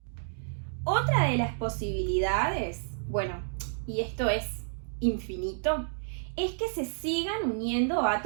Otra de las posibilidades, bueno, y esto es infinito, es que se sigan uniendo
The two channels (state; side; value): silent; left; digital silence